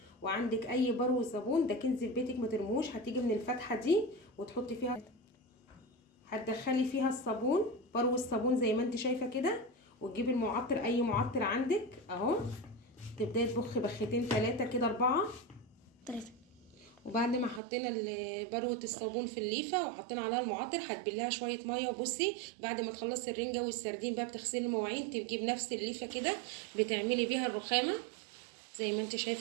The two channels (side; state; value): left; drops out; at 17.6 s